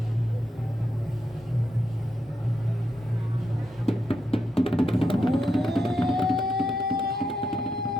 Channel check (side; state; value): both; normal; correlation 0.83